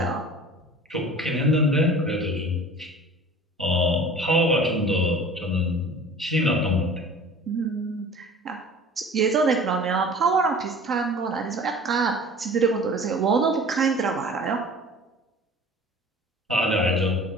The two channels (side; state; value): both; normal; correlation 0.43